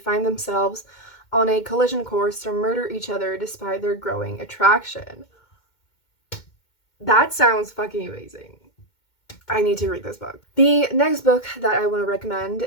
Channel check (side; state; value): right; late; 2.2 ms